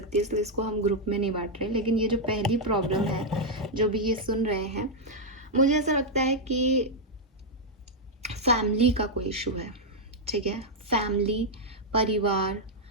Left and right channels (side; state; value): both; normal; correlation -0.02